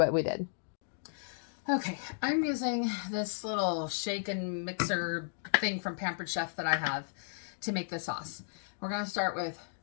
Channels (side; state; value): right; silent; digital silence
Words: we did. Okay, I'm using this little shake and mixer thing from Pampered Chef that I have to make the sauce. We're going to start with